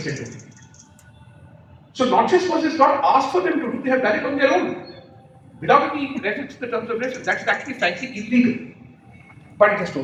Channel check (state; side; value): identical; both; correlation 1.00